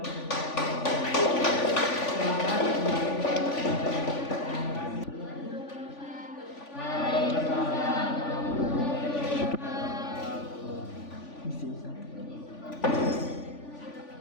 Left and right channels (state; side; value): late; right; 3.5 ms